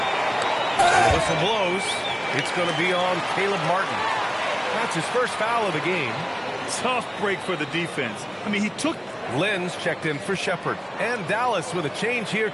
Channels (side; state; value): both; identical; correlation 1.00